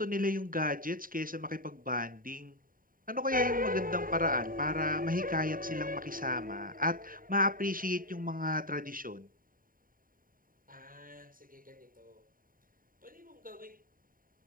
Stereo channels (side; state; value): left; late; 0.41 ms